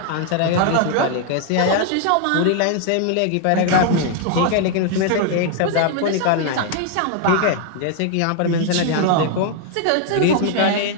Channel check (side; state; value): both; different; correlation 0.00